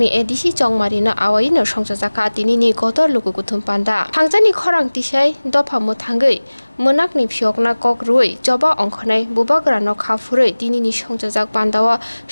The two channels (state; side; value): inverted; both; correlation -1.00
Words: ADC Chongmarina Awaino Songchajakha Tinini Kotor Lukuthum Panda Hangjani Khorang Tisai Dopha Mothangui Monakni Phiokna Kokrui Joba Ongkhonai Bubagra no Khafurui Tinini Songjajak Pandawa